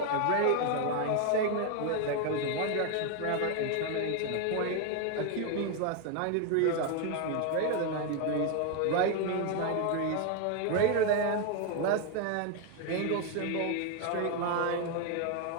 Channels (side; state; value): both; different; correlation 0.01